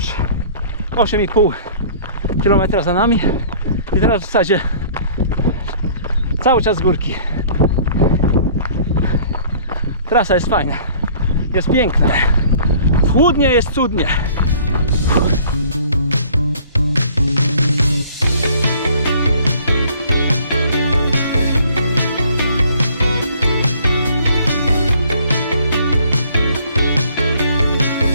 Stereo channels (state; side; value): inverted; both; correlation -0.53